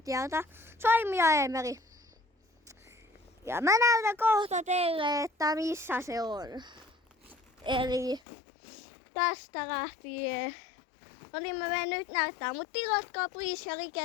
Saimi ja Eemeli. Ja mä näytän kohta teille, että missä se on. Eli tästä lähtien. No niin mä menen nyt näyttää, mutta tilatkaa please ja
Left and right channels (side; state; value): right; drops out; at 8.2 s